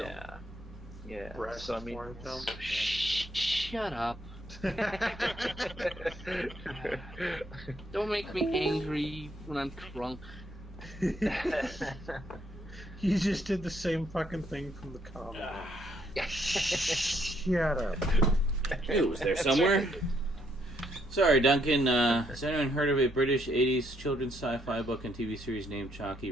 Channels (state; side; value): normal; both; correlation 0.72